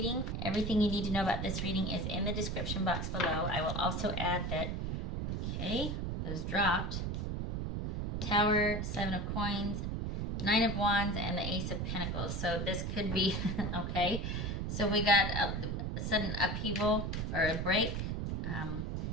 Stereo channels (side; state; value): right; noise; rumble, 2 dB below the sound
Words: Everything you need to know about this reading is in the description box below. I will also add that, okay, those dropped. Tower, 7 of Coins, 9 of Wands, and the Ace of Pentacles. So this could be, okay. So we got a sudden upheaval or a break,